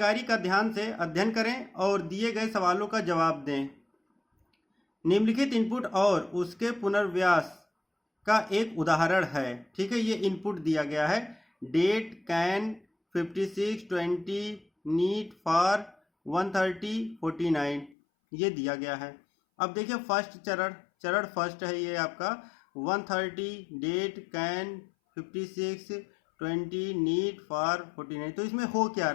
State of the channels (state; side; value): drops out; right; at 17.9 s